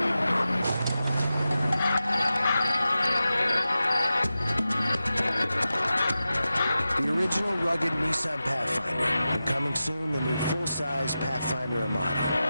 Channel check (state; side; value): inverted; both; correlation -0.93